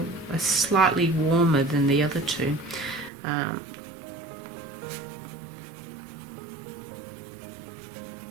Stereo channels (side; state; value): left; drops out; at 3.1 s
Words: slightly warmer than the other two.